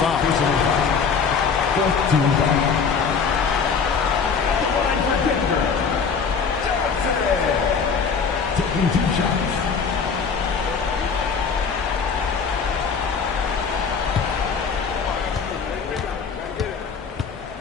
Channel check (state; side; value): quieter; right; 5.8 dB